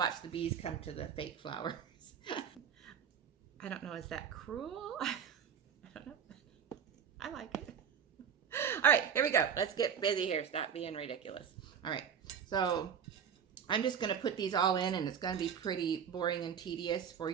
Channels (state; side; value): quieter; left; 7.6 dB